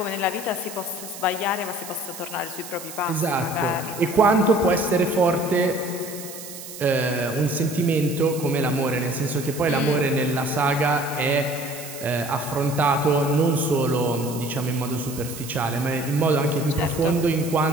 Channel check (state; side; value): noise; right; hiss, 12 dB below the sound